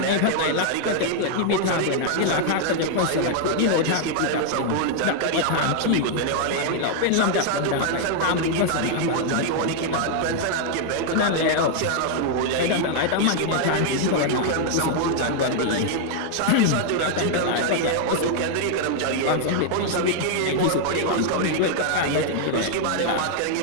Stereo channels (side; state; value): both; different; correlation 0.00